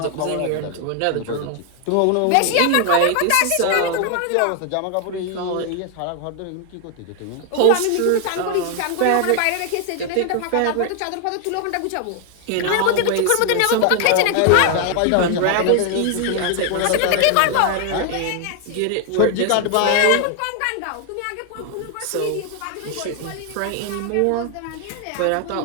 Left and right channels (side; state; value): both; different; correlation 0.00